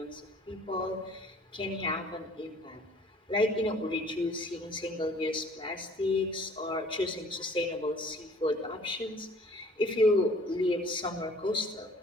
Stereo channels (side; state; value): both; normal; correlation 0.53